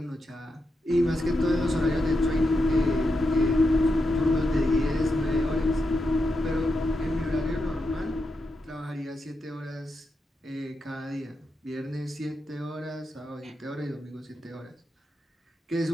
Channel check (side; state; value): both; normal; correlation 0.86